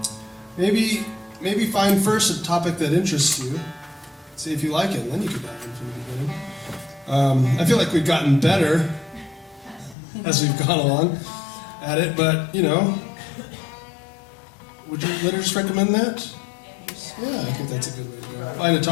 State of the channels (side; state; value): right; drops out; at 10.0 s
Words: Maybe find first a topic that interests you. See if you like it, and then you can dive in from the beginning. I feel like we've gotten better as we've gone along at it, but would you liturgists recommend that? Yeah, I think that's a good way to go. Find a